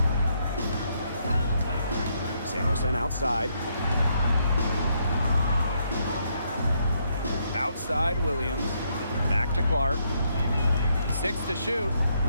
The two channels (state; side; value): inverted; both; correlation -0.74